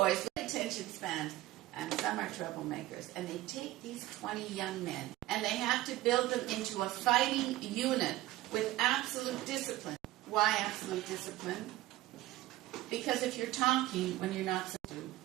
with attention spans. And some are troublemakers. And they take these 20 young men, and they have to build them into a fighting unit with absolute discipline. Why absolute discipline? Because if you're talking when you're not supposed to,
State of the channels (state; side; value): quieter; left; 16.5 dB